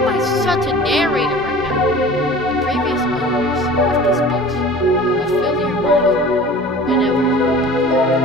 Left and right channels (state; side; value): normal; both; correlation 0.42